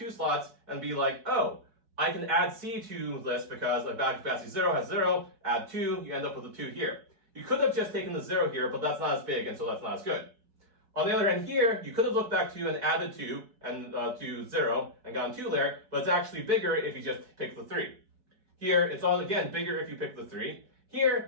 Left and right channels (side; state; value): left; late; 4.6 ms